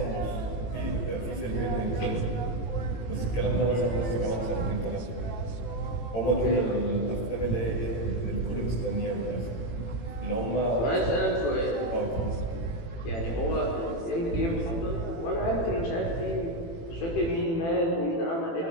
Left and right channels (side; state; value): right; late; 18 ms